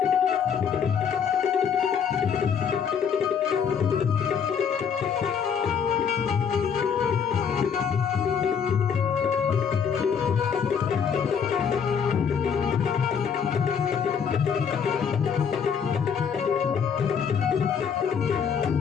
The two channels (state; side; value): quieter; right; 7.1 dB